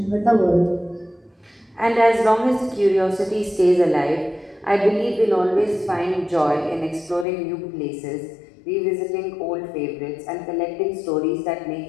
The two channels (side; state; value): right; drops out; at 7.2 s